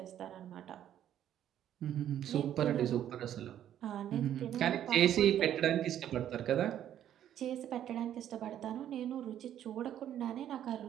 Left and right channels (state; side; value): quieter; left; 10.9 dB